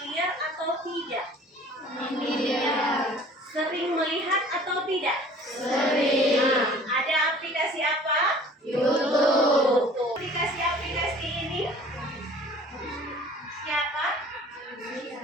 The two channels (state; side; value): normal; both; correlation 0.49